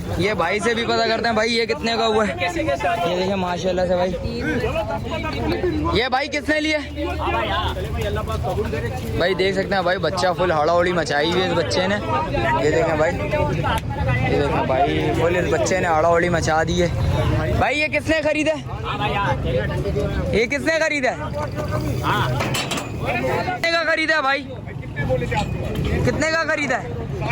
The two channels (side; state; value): both; identical; correlation 1.00